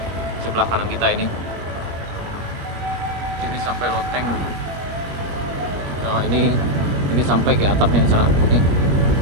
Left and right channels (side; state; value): left; late; 21 ms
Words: sebelah kanan kita ini sampai loteng. Nah ini sampai ke atapnya di sana.